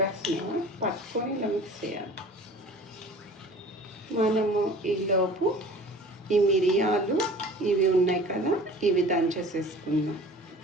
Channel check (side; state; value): both; normal; correlation 0.43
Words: పట్టుకొని ఇలా మిక్స్ చేయాలి. మనము ఈలోపు ఈ మిరియాలు ఇవి ఉన్నాయి కదా, ఇవి దంచేసేసుకుందాం.